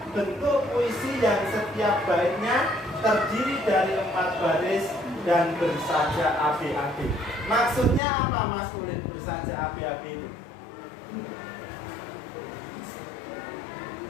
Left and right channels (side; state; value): right; drops out; at 8.0 s